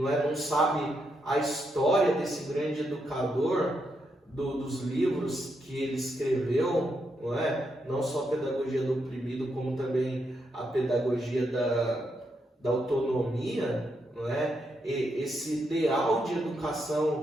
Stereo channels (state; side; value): normal; both; correlation 0.81